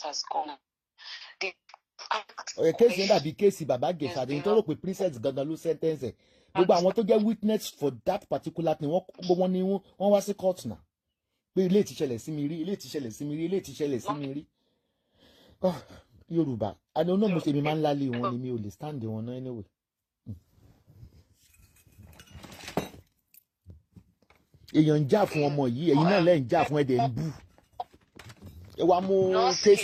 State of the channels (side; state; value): both; identical; correlation 1.00